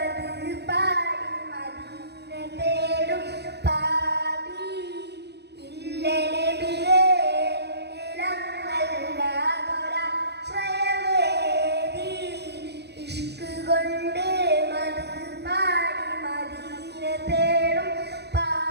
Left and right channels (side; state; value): left; late; 0.48 ms